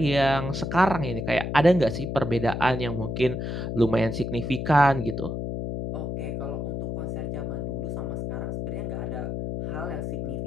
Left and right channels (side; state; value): left; noise; hum, 3 dB below the sound